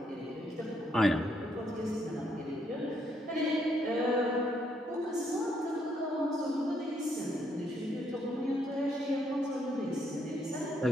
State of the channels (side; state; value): both; normal; correlation 0.73